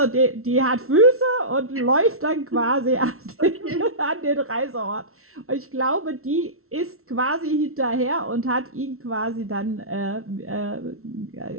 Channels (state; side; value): late; left; 0.62 ms